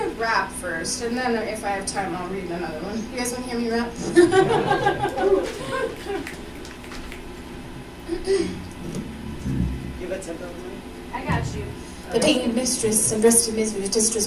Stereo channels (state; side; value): identical; both; correlation 1.00